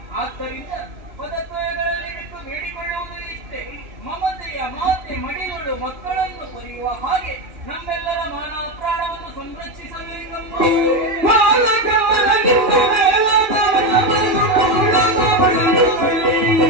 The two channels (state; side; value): late; left; 2.8 ms